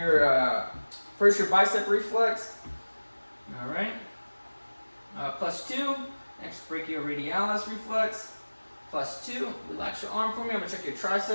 first your bicep reflex. All right. +2. Next, brachioradialis reflex. +2. Relax your arm for me. I'm gonna check your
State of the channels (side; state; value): both; inverted; correlation -1.00